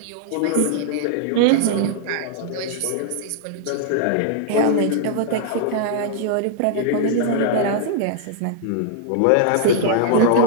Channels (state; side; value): different; both; correlation -0.01